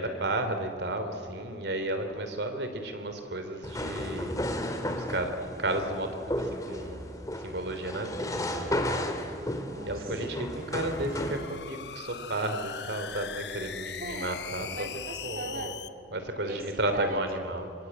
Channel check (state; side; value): normal; both; correlation 0.16